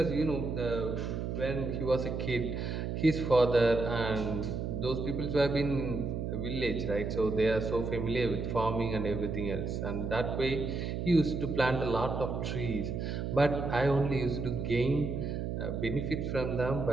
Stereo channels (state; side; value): noise; right; hum, 3 dB below the sound